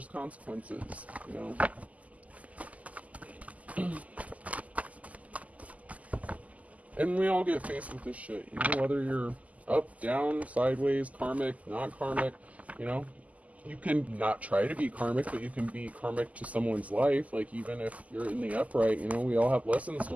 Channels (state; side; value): late; left; 0.073 ms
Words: consequences, you know. And we all get faced with this shit, you know, whether you're up, down, sideways, karmic, not karmic, you know. you can not try to be karmic, but you can be karmic to someone's life. Like, even if you're in the upright, you know, we all have lessons to